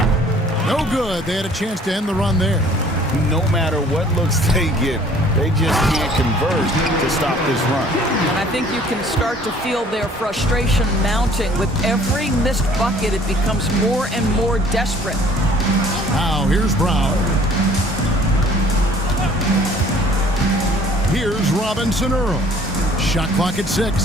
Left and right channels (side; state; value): both; normal; correlation 0.55